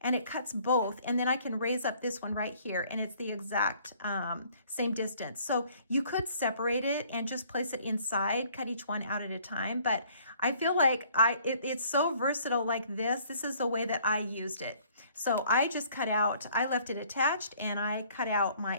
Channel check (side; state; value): both; inverted; correlation -0.59